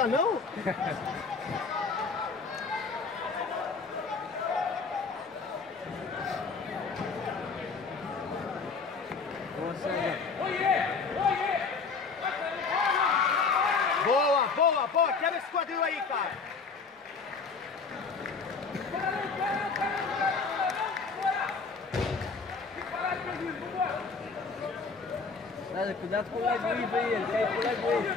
não? Boa, boa, boa! Quebra esse quadril aí, cara! Nada, cuidado com o leg wave aí, ele quer ir pro leg wave.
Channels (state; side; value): quieter; right; 4.8 dB